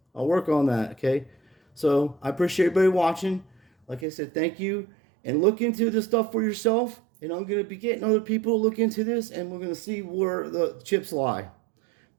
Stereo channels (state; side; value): drops out; left; at 4.0 s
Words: I'll work on that, okay? So I appreciate everybody watching. Like I said, thank you. And look into this stuff for yourself. And I'm going to be getting other people to look into this. And we're going to see where the chips lie.